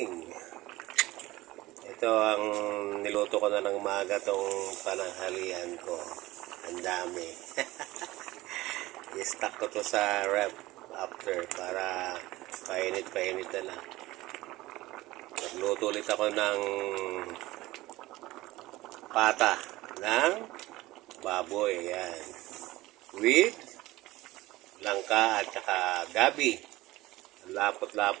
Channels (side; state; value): left; quieter; 18.5 dB